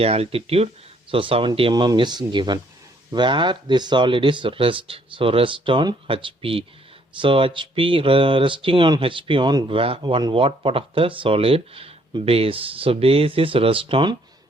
altitude. So 70 mm is given. Where this solid is rest. So rest on HP. So HP resting on HP on what part of the solid? Base. So base is rest on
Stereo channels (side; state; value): both; normal; correlation 0.66